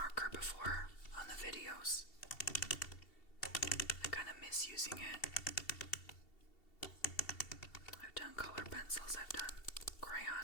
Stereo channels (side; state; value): right; late; 2.7 ms